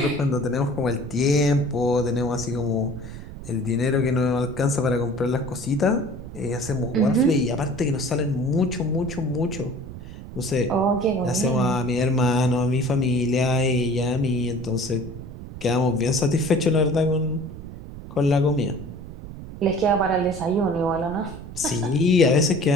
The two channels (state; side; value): noise; right; rumble, 12 dB below the sound